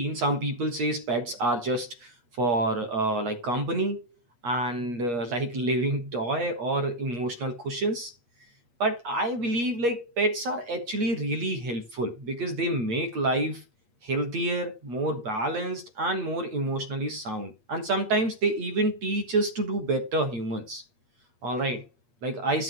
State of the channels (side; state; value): left; late; 8.4 ms